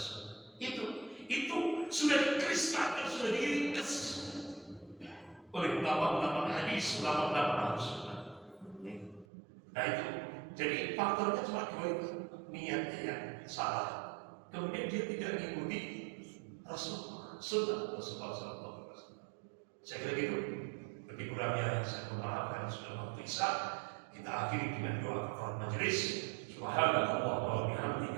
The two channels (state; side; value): drops out; left; at 9.2 s